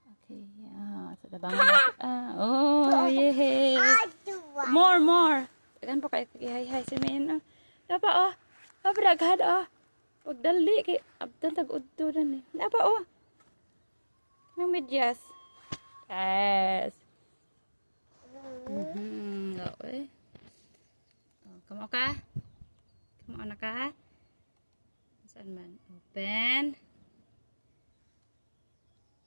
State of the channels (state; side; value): inverted; both; correlation -1.00